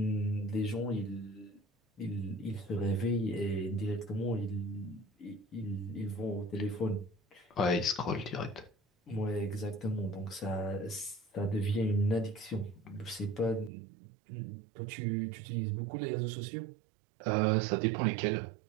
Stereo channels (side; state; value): left; drops out; at 13.7 s